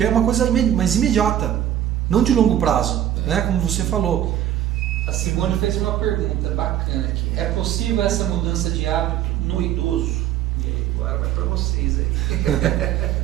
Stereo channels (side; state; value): left; quieter; 11.5 dB